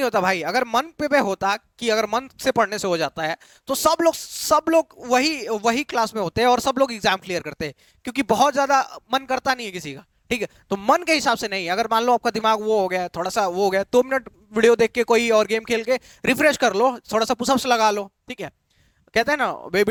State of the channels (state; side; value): identical; both; correlation 1.00